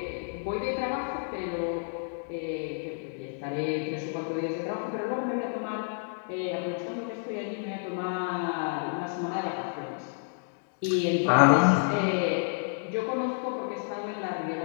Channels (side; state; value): right; silent; digital silence